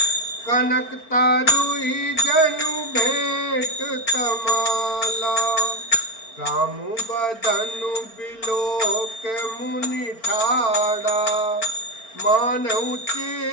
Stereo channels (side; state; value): right; late; 4.4 ms